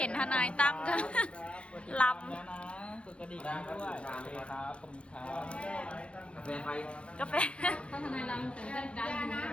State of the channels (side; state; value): right; late; 0.059 ms